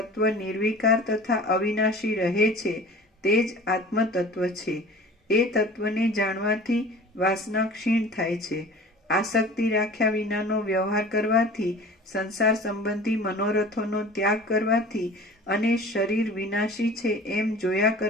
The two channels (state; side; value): normal; both; correlation 0.42